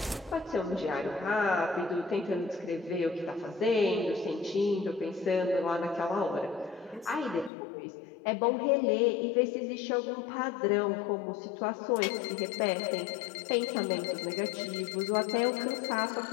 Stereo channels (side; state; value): right; drops out; at 7.5 s